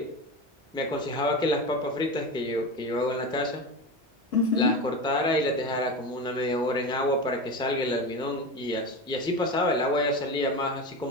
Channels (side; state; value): both; normal; correlation 0.25